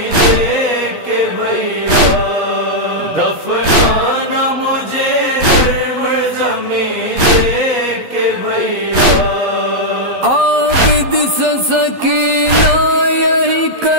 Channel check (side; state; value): left; late; 12 ms